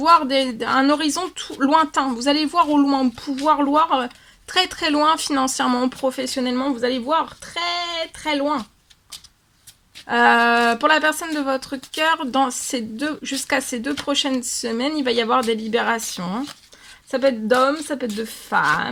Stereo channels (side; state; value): both; identical; correlation 1.00